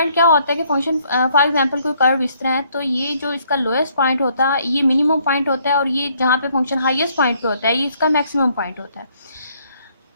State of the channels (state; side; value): inverted; both; correlation -0.67